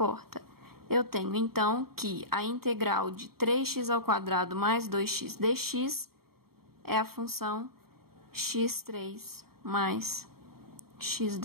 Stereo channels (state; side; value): late; left; 0.94 ms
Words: Eu tenho, então, que a integral de 3x ao quadrado mais 2x dx é a função x3 mais